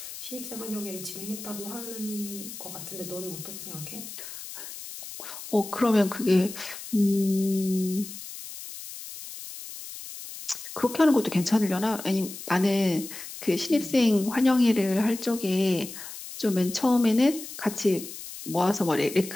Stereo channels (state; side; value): noise; left; hiss, 12 dB below the sound